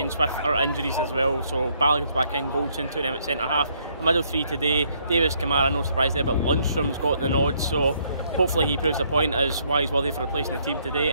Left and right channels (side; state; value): both; inverted; correlation -0.69